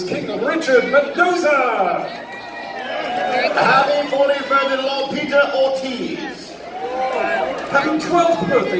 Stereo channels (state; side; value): identical; both; correlation 1.00